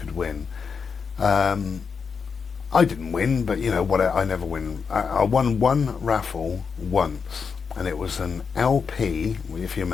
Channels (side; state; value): right; quieter; 5.8 dB